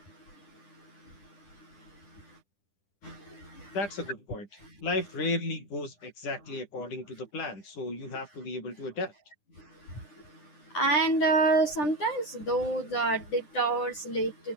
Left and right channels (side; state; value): right; late; 10 ms